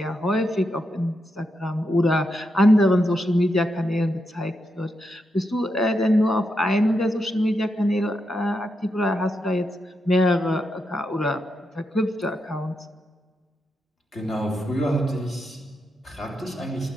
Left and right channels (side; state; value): both; normal; correlation 0.84